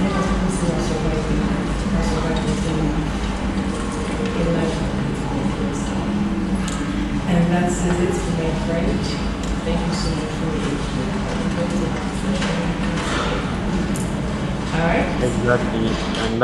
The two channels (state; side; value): identical; both; correlation 1.00